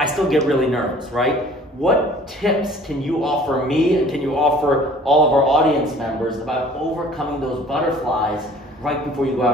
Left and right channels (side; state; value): both; normal; correlation 0.51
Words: still get really nervous, right? What tips can you offer me, and can you offer all of our audience members about overcoming those butterflies right before you go